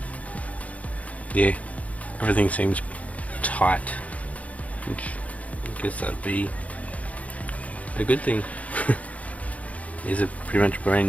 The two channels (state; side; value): late; right; 0.068 ms